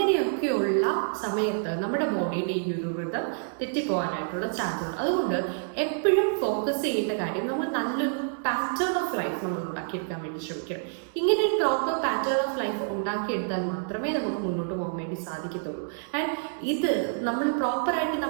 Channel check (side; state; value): left; silent; digital silence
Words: സമയത്ത് നമ്മുടെ ബോഡിയുടെ ഈ ഒരു വൃതം തെറ്റിപ്പോകാനായിട്ടുള്ള ചാൻസ് ഉണ്ട്. അതുകൊണ്ട് എപ്പോഴും ഫോക്കസ് ചെയ്യേണ്ട കാര്യം നമ്മൾ നല്ലൊരു പാറ്റേൺ ഓഫ് ലൈഫ് നമ്മൾ ഉണ്ടാക്കിയെടുക്കാൻ വേണ്ടി ശ്രമിക്കണം. ഇങ്ങനെ ഒരു പ്രോപ്പർ പാറ്റേൺ ഓഫ് ലൈഫ് ഉണ്ടാക്കിയെടുത്താൽ മാത്രമേ നമുക്ക് മുന്നോട്ട് പോകാൻ വേണ്ടി സാധിക്കത്തുള്ളൂ. ആൻഡ് ഇത് നമ്മൾ പ്രോപ്പറായിട്ട്